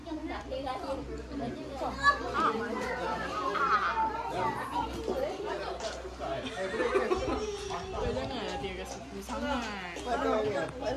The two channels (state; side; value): identical; both; correlation 1.00